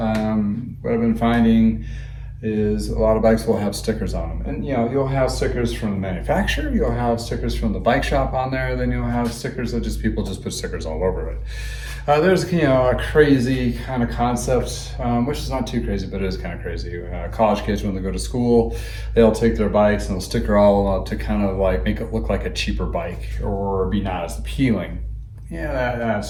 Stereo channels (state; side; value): identical; both; correlation 1.00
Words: I've been finding is a lot of bikes will have stickers on them. And you'll have stickers from the manufacturer, you'll have stickers from the bike shop on there, then you'll have stickers that people just put stickers all over it. There's a crazy kind of concept, which is not too crazy, but it is kind of crazy. College kids, when they go to school, they'll take their bikes and they'll sticker all up to kind of like make it look like a cheaper bike or be not as appealing. Yeah, that's